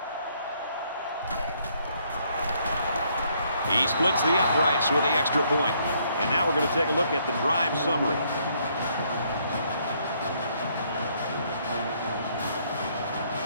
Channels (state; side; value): inverted; both; correlation -0.69